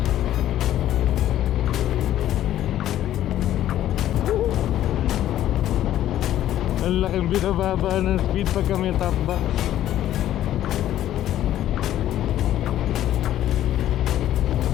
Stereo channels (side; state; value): right; quieter; 12.4 dB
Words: Ang laking binababa ng speed pagka may top box.